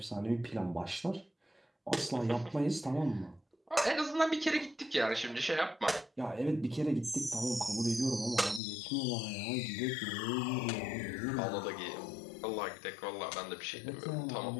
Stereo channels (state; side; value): drops out; right; at 8.6 s